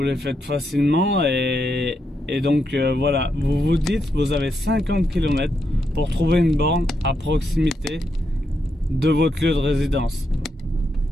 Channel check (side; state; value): both; normal; correlation 0.81